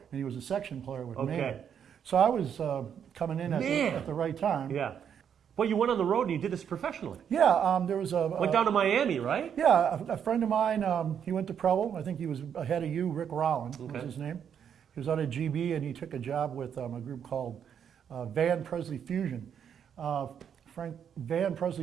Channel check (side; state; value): left; quieter; 8.2 dB